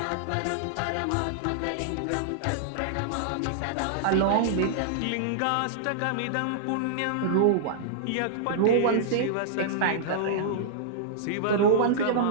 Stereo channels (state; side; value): different; both; correlation -0.01